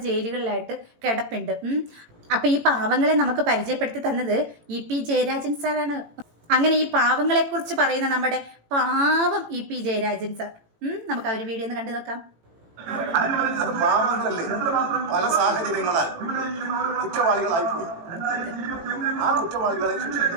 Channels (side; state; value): left; late; 18 ms